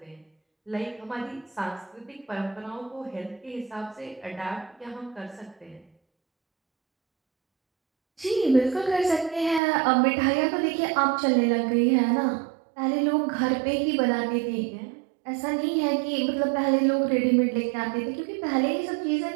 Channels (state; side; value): drops out; left; at 9.6 s